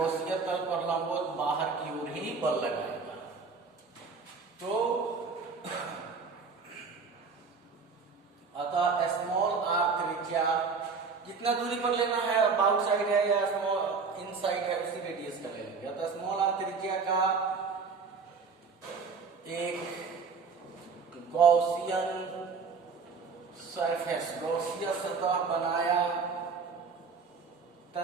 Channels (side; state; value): left; quieter; 5.1 dB